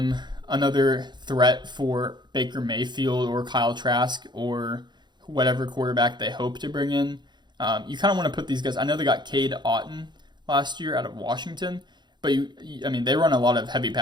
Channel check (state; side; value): late; left; 0.21 ms